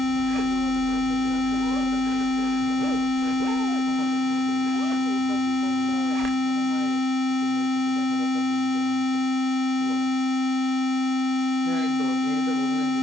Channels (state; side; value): normal; both; correlation 0.75